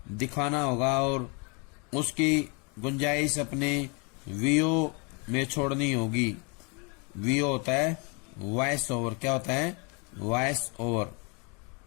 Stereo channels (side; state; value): right; quieter; 33.1 dB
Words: दिखाना होगा और उसकी गुंजाइश अपने वीओ में छोड़नी होगी। वीओ होता है वॉइस ओवर। क्या होता है? Voice over.